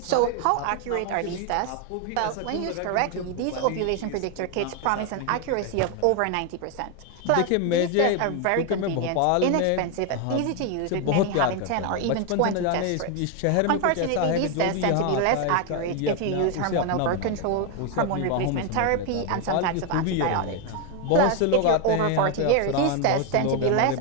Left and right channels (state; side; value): different; both; correlation 0.01